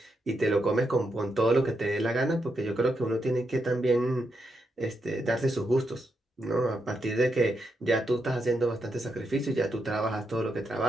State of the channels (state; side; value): normal; both; correlation 0.83